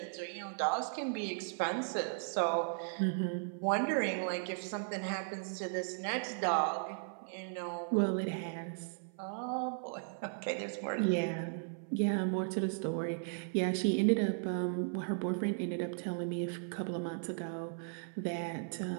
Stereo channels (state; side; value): silent; left; 53 dB below the other